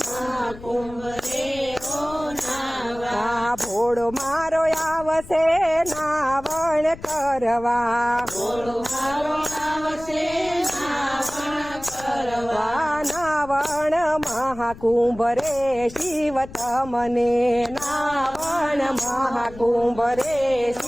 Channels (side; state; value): left; noise; rumble, 17 dB below the sound